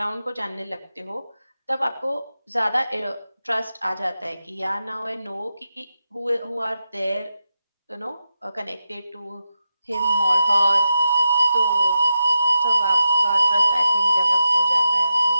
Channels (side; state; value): both; inverted; correlation -0.88